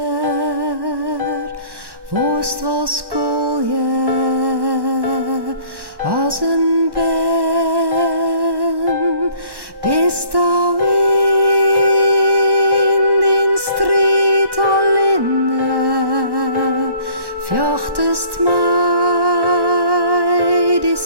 worst was koolje, als een ben, bist thou in den strijd alleen, vjochtest mij die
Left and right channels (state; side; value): late; left; 1.1 ms